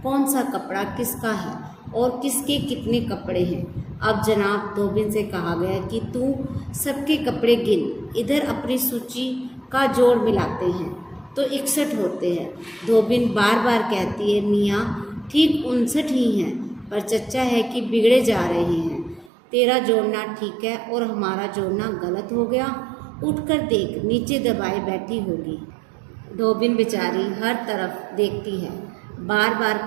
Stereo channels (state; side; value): drops out; left; at 19.3 s